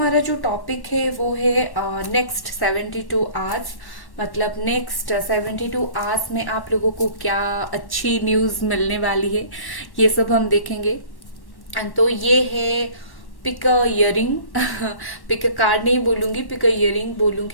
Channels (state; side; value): late; right; 1.1 ms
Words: जो टॉपिक है वो है नेक्स्ट 72 आवर्स। मतलब नेक्स्ट 72 आवर्स में आप लोगों को क्या अच्छी न्यूज मिलने वाली है, ये सब हम देखेंगे। तो ये है pick a earring. Pick a card नहीं बोलूंगी, पिक अ इयरिंग